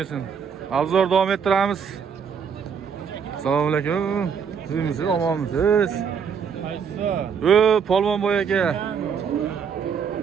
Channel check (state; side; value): quieter; left; 6.8 dB